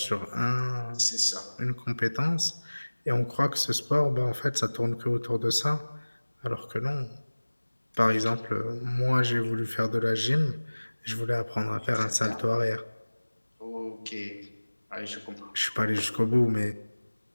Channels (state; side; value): inverted; both; correlation -1.00